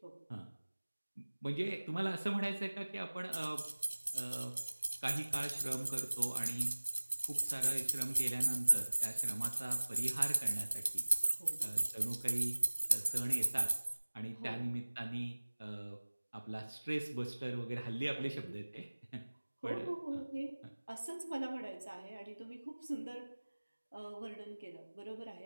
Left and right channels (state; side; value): inverted; both; correlation -1.00